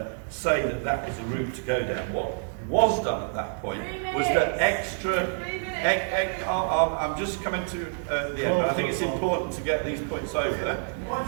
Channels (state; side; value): silent; left; digital silence